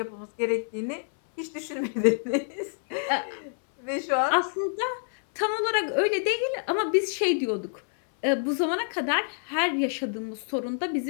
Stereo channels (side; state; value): right; silent; 60 dB below the other